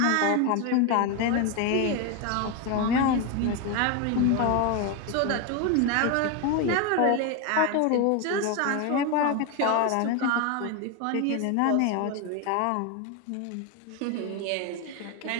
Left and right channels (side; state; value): both; different; correlation 0.02